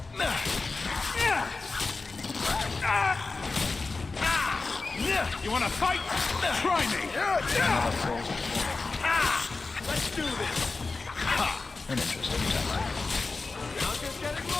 You wanna fight? Try me! Another falls Let's do this! An interesting tactic. I'll just get it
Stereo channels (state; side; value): quieter; right; 3.9 dB